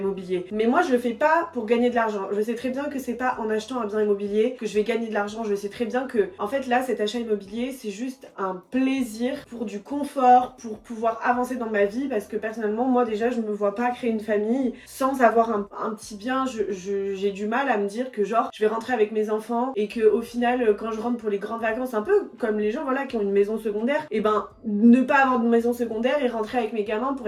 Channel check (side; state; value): both; identical; correlation 1.00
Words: Mais moi, je le fais pas pour gagner de l'argent. Je sais très bien que c'est pas en achetant un bien immobilier que je vais gagner de l'argent. Je sais très bien que, en fait, là, cet achat immobilier, c'est juste un plaisir pour du confort, pour pouvoir avancer dans ma vie. Parce que personnellement, moi, déjà, je me vois pas créer une famille sans avoir un petit bien. J'ai du mal à me dire que genre je vais rentrer avec mes enfants et que au final quand je rentre pour les grandes vacances, un peu comme les gens voilà qui ont une maison secondaire, et ben ne pas avoir de maison secondaire et rentrer avec mes gamins pour